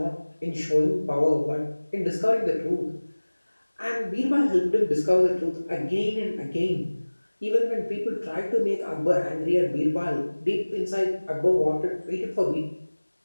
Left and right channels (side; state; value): both; inverted; correlation -1.00